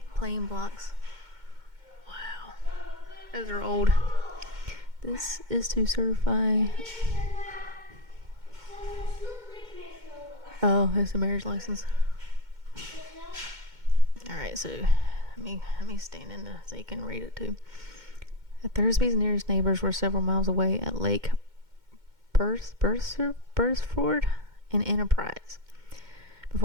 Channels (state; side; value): late; left; 2.1 ms